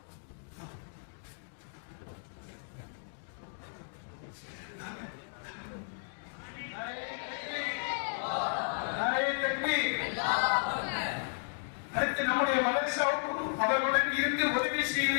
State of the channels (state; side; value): silent; right; digital silence